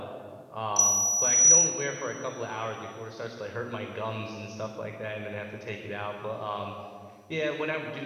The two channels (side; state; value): both; identical; correlation 1.00